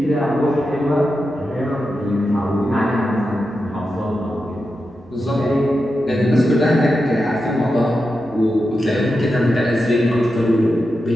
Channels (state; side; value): noise; right; hum, 29 dB below the sound